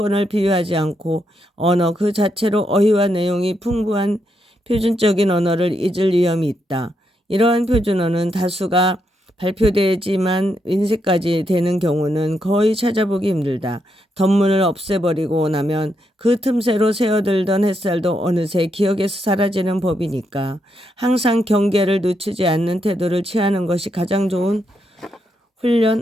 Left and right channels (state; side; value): normal; both; correlation 0.80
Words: 비유하지 않고 언어 그 자체로 어휘와 내용이 풍부한 표준적인 언어를 잊을 위험이 있다. 이러한 표준어는 다수가 발표되지만 인쇄까지 되는 경우는 거의 찾아보기 힘들다. 덧문을 없애버리고 나면 그 틈새로 새어들던 햇살도 어느새 기억에서 사라지는 법이니까 항상 경계를 늦추지 않는 태도를 취하는 것이 가장 좋은